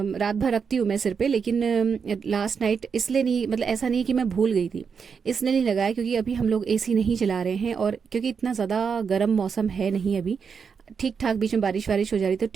रात भर रखती हूँ मैं सिर पे, लेकिन लास्ट नाइट इसलिए नहीं, मतलब ऐसा नहीं कि मैं भूल गई थी, इसलिए नहीं लगाया क्योंकि अभी हम लोग एसी नहीं चला रहे हैं, और क्योंकि इतना ज़्यादा गर्म मौसम है नहीं अभी, ठीक ठाक बीच में बारिश वारिश हो जा रही तो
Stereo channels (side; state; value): left; quieter; 6.2 dB